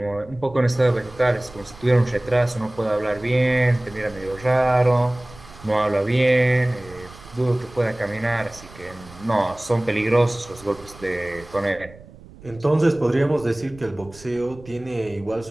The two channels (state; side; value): noise; right; rumble, 20 dB below the sound